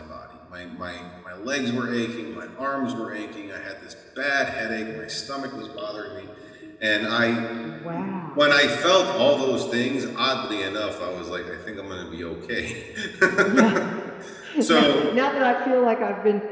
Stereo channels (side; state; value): both; identical; correlation 1.00